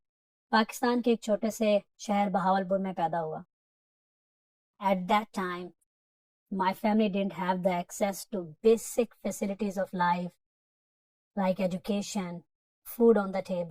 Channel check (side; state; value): both; identical; correlation 1.00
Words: पाकिस्तान के एक छोटे से शहर बहावलपुर में पैदा हुआ। At that time my family didn't have the access to basic facilities of life like education, food on the